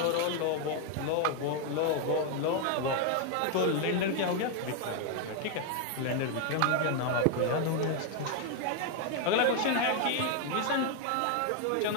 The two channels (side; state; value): both; different; correlation 0.01